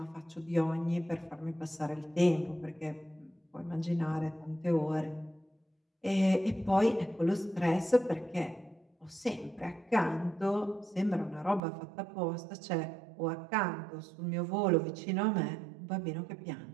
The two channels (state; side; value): drops out; left; at 11.6 s